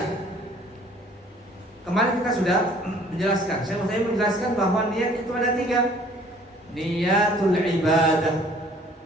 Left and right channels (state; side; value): normal; both; correlation 0.55